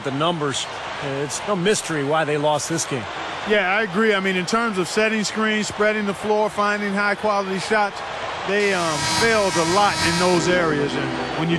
the numbers, it's no mystery why they lost this game. Yeah, I agree. I mean, in terms of setting screens, spreading the floor, finding high-quality shots, they failed a lot in those areas. And when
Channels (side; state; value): both; identical; correlation 1.00